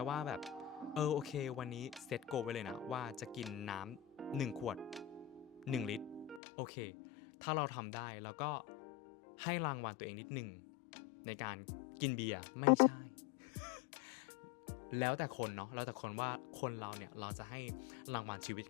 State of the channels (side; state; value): right; drops out; at 6.4 s